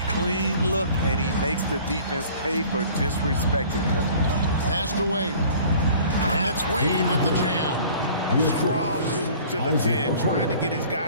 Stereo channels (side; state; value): both; inverted; correlation -0.49